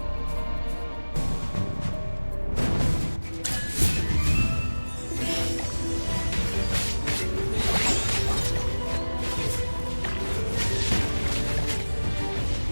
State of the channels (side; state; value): both; inverted; correlation -1.00